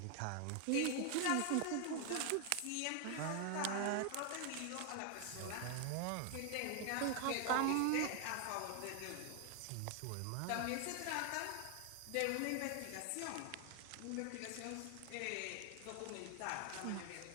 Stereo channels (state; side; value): different; both; correlation 0.00